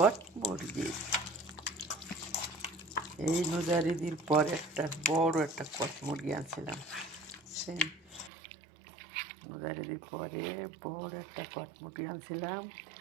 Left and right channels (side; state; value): left; drops out; at 8.3 s